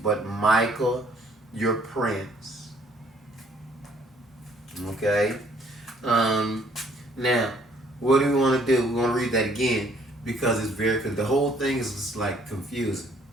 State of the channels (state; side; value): normal; both; correlation 0.62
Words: Michael your prince." Okay? Now, what do we want to do? We want to read that again because it's because the whole thing is just like confusing.